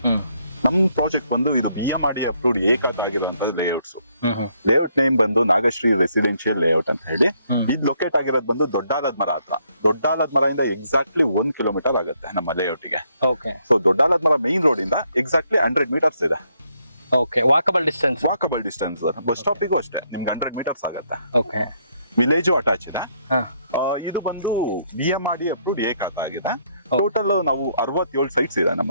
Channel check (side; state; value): both; inverted; correlation -0.72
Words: ನಮ್ ಪ್ರಾಜೆಕ್ಟ್ ಬಂದು ಇದು ಬಿಎಂಆರ್ಡಿಎ ಅಪ್ರೂವ್ಡ್ ಏಕಾತ ಆಗಿರುವಂತ ಲೇಔಟ್ಸ್. ಲೇಔಟ್ ನೇಮ್ ಬಂದು ನಾಗಶ್ರೀ ರೆಸಿಡೆನ್ಶಿಯಲ್ ಲೇಔಟ್ ಅಂತ ಹೇಳಿ. ಇದು ಲೊಕೇಟ್ ಆಗಿರೋದು ಬಂದು ದೊಡ್ಡಾಲದ ಮರ ಹತ್ರ. ದೊಡ್ಡಾಲದ ಮರದಿಂದ ಎಕ್ಸಾಕ್ಟ್ಲಿ 1 ಕಿಲೋಮೀಟರ್ ಆಗುತ್ತೆ ನಮ್ಮ ಲೇಔಟ್ ಗೆ. ಸೊ ದೊಡ್ಡಾಲದ ಮರ ಮೈನ್ ರೋಡ್ ಇಂದ ಎಕ್ಸಾಕ್ಟ್ಲಿ 100 ಮೀಟರ್ಸ್ ಇದೆ. ವಾಕಬಲ್ ಡಿಸ್ಟೆನ್ಸ್ ಬಸ್ ಸ್ಟಾಪಿಗೂ ಅಷ್ಟೇ ನಿಮ್ಗೆ 100 ಮೀಟರ್ಸ್ ಆಗುತ್ತೆ. ವಿಲೇಜು ಅಟ್ಯಾಚ್ ಇದೆ. ಇದು ಬಂದು ಬಿಎಂಆರ್ಡಿಎ ಅಪ್ರೂವ್ಡ್ ಏಕಾತ ಆಗಿದೆ. ಟೋಟಲ್ ನಾವು 67 ಸೈಟ್ಸ್ ಇದೆ